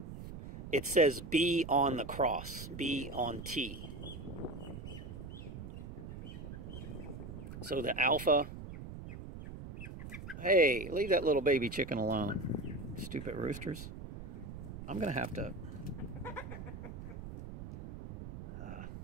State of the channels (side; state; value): right; noise; rumble, 10 dB below the sound